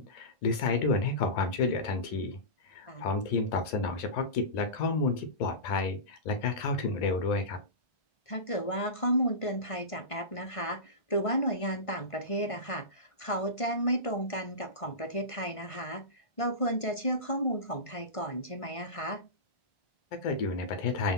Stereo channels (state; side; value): late; right; 1.5 ms